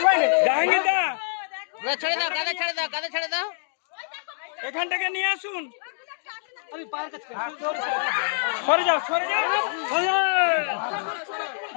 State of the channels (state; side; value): silent; right; digital silence